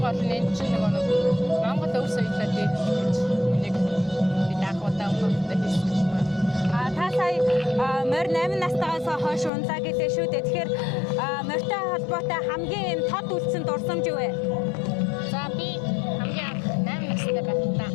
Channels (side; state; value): right; drops out; at 9.5 s